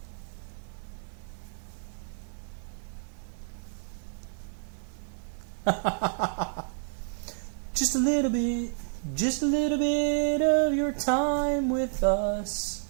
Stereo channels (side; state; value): left; silent; 58 dB below the other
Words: Just a little bit. Just a little bit of your time with us.